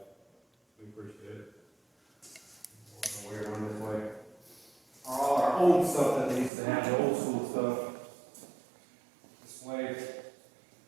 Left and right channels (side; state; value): left; drops out; at 6.5 s